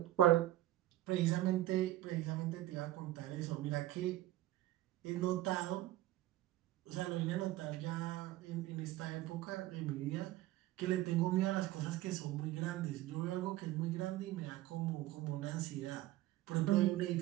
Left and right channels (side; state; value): left; quieter; 15.4 dB